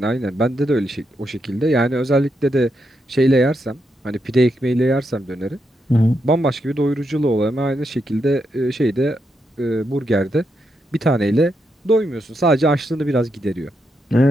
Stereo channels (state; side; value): normal; both; correlation 0.82